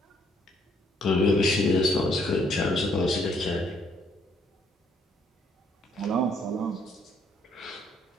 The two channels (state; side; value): normal; both; correlation 0.67